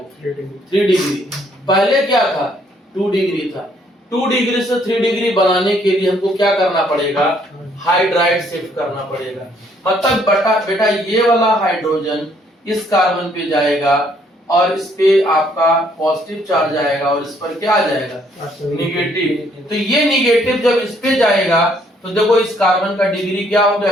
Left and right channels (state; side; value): normal; both; correlation 0.66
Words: 3 डिग्री। पहले क्या था 2 डिग्री था। 2 डिग्री से 3 डिग्री बनाने के लिए हमको क्या करना पड़ेगा हाइड्राइड शिफ्ट करना पड़ेगा। मतलब बेटा ये वाला हाइड्रोजन इस कार्बन पे जाएगा और इस पे आपका पॉजिटिव चार्ज आएगा और इस पर क्या आ जाएगा निगेटिव। तो ये निगेटिव जब इस पे जाएगा तो देखो इस कार्बन का डिग्री क्या हो गया